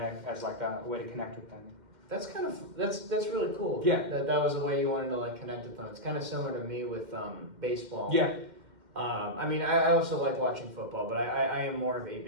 as a way to connect with them. That's kind of that's really cool. Yeah. That was the way you wanted to connect with them. It's kind of similar to me with baseball. Yeah. I mean, I also like watching football, but I am more of a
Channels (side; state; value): left; late; 2.1 ms